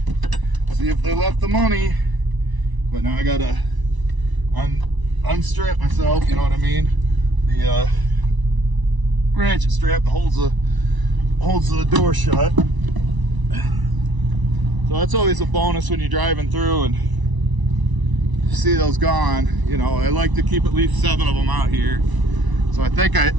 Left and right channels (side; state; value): left; late; 1.0 ms